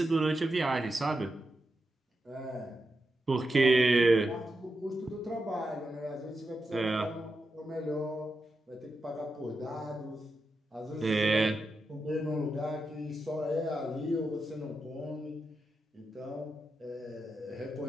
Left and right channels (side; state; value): both; normal; correlation 0.88